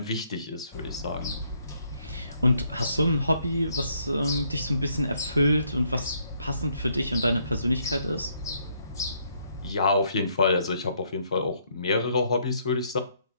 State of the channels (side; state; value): both; inverted; correlation -0.71